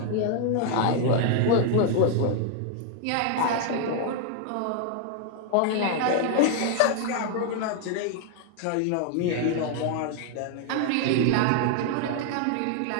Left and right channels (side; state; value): both; different; correlation 0.00